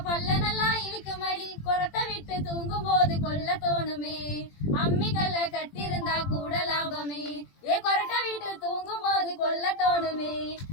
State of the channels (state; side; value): late; right; 20 ms